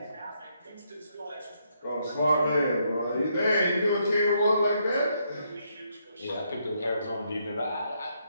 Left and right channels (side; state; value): both; inverted; correlation -0.75